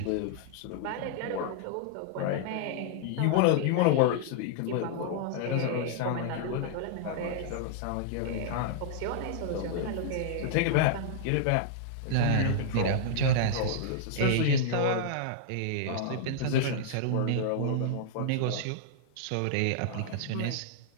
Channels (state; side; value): different; both; correlation -0.01